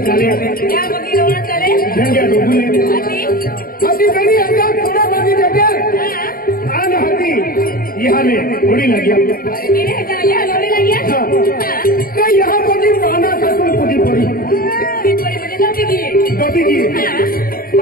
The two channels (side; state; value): right; late; 0.42 ms